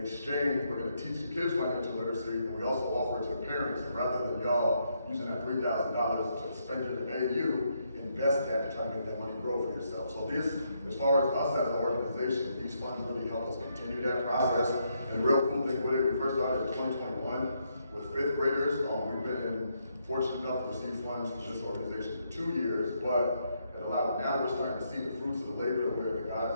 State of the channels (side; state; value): both; inverted; correlation -0.77